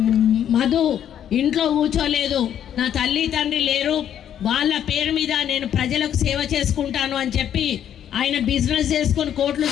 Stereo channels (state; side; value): quieter; right; 9.9 dB